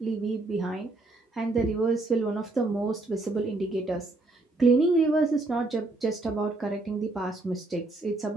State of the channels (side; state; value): left; quieter; 3.0 dB